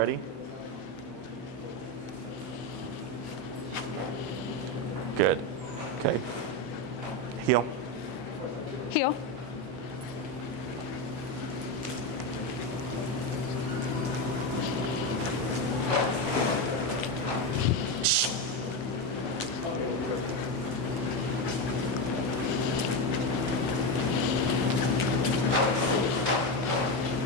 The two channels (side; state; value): both; normal; correlation 0.13